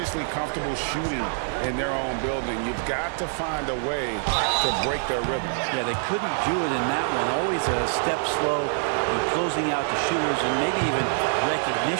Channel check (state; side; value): silent; left; digital silence